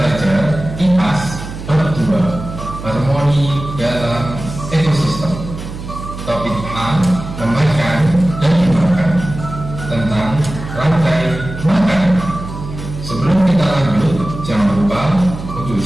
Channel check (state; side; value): noise; right; hum, 10 dB below the sound